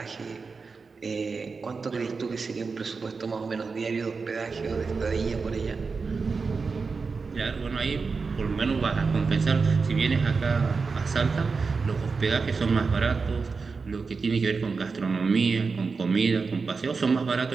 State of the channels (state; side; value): quieter; left; 4.7 dB